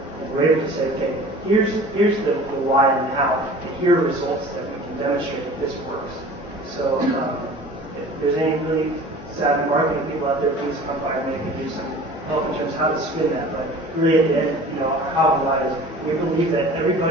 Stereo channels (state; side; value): normal; both; correlation 0.43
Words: and we're able to say, okay, here's the why and the how, and here are results that we can demonstrate that this works. So if there's any really savvy marketing people out there, please come by and they can do some help in terms of how to spin that. But really at the end, our how and why is we believe that